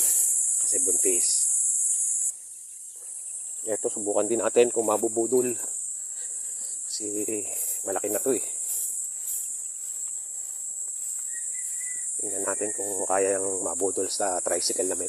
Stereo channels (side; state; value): both; identical; correlation 1.00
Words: Kasi buntis. Ito, subukan din natin kung mabubudol. Kasi, malaki na to eh. Tingnan natin kung kaya yung mabudol sa tricycle na